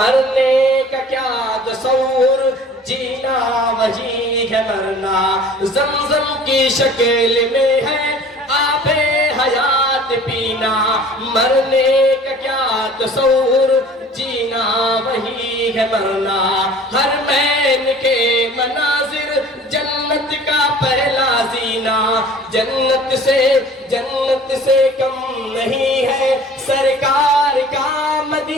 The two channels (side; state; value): both; normal; correlation 0.47